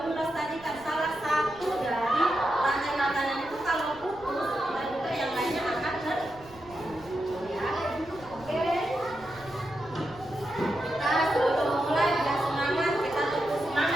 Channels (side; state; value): right; noise; rumble, 22 dB below the sound